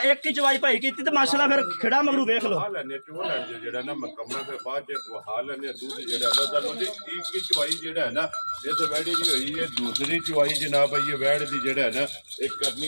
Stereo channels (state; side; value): inverted; both; correlation -1.00